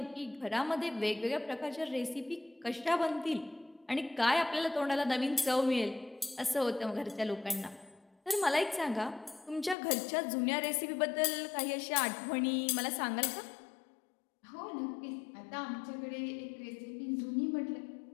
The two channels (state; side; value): drops out; right; at 9.8 s